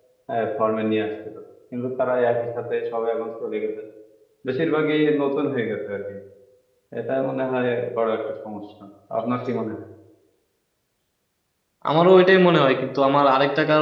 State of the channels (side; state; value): both; identical; correlation 1.00